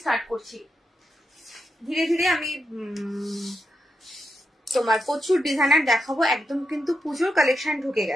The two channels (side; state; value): both; normal; correlation 0.85